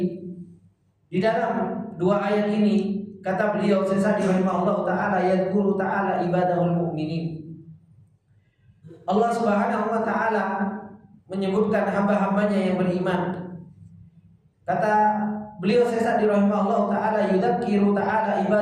di dalam dua ayat ini, kata beliau Syekh Sa'di rahimahullah ta'ala, yadhkuru ta'ala ibadahul mu'minin. Allah subhanahu wa ta'ala menyebutkan hamba-hambanya yang beriman. Kata beliau Syekh Sa'di rahimahullah ta'ala, yudzakiru ta'ala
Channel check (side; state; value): both; identical; correlation 1.00